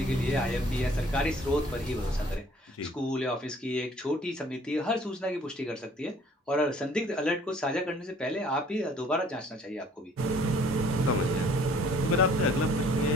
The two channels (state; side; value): normal; both; correlation 0.56